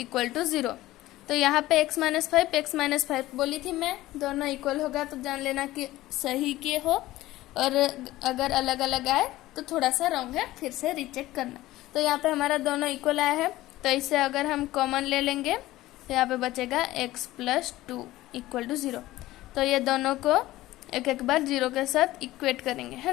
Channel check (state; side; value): quieter; right; 16.6 dB